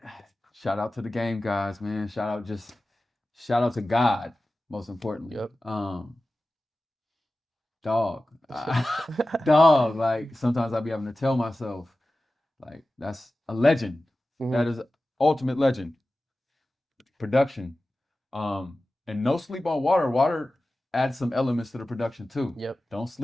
shout out to the game guys, man. Shout out to God, most importantly. Yep. Dog. Dog. Like sometimes I be having to tell myself, like, that's a legend. Mhm. That is ultimate legend. Production. And no sleep on water. Water adds some elements to the production too. Yep. Don't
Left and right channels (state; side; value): normal; both; correlation 0.95